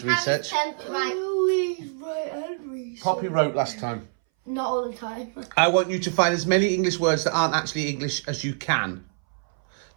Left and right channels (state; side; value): silent; left; 60 dB below the other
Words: research. Harry's turn to write. Poppy wrote last time. Not all the time. I want you to find as many English words that aren't actually English as you can.